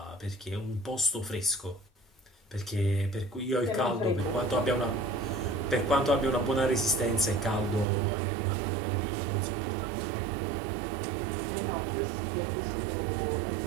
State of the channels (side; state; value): left; drops out; at 7.9 s